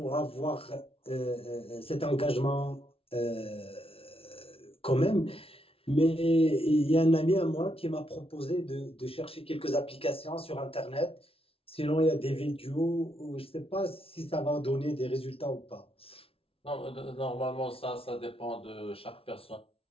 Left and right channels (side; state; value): right; late; 0.27 ms